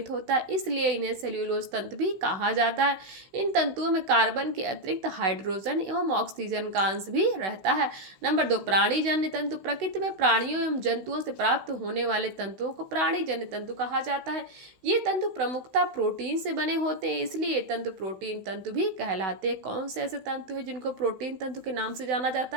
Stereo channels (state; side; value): late; left; 16 ms